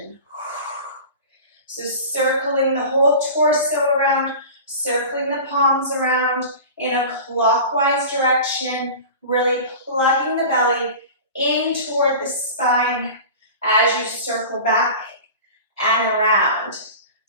So circling the whole torso around, circling the palms around in a clockwise direction, really plugging the belly in toward the spine as you circle back and around.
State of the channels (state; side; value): inverted; both; correlation -0.35